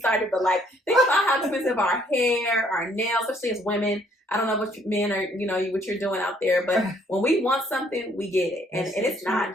but think about how expensive our hair, our nails, especially as women. I don't know what men are, what you're doing out there, but when we want something, we get it. And it's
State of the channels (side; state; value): both; normal; correlation 0.65